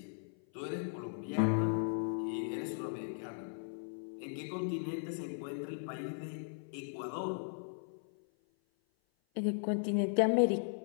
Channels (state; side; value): silent; right; 53 dB below the other